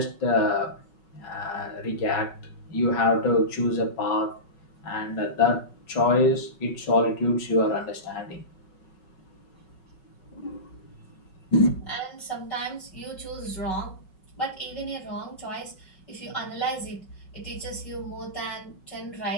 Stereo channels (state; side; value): late; right; 5.4 ms